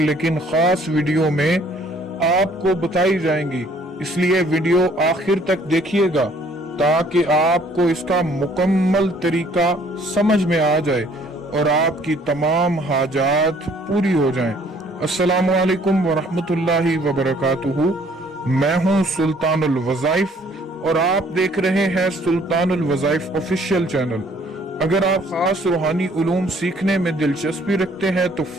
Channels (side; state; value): both; normal; correlation 0.60